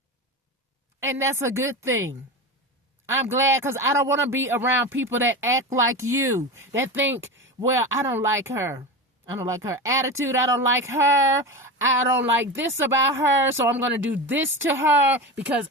And that's a good thing. I'm glad because I don't want to be around people that act like you, that think, well, I don't like her. I don't like her attitude. I don't like her. I don't like this about her. So I'm going to do this to her because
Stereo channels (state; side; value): normal; both; correlation 0.23